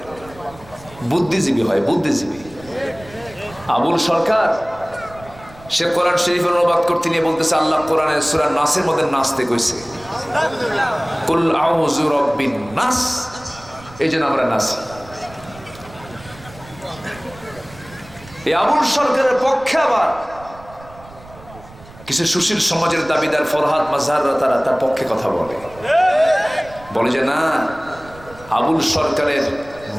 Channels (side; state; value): right; noise; rumble, 21 dB below the sound